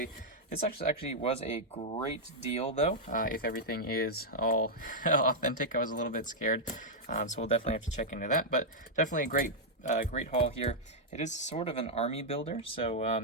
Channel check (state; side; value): normal; both; correlation -0.04